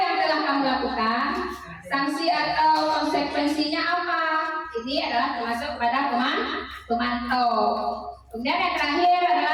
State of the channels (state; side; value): identical; both; correlation 1.00